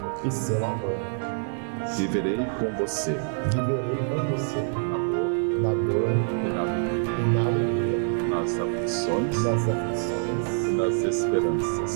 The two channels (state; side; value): silent; left; digital silence